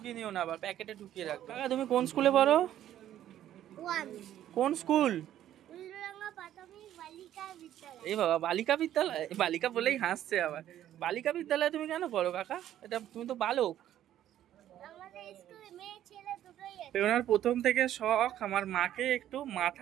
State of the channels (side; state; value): left; quieter; 11.9 dB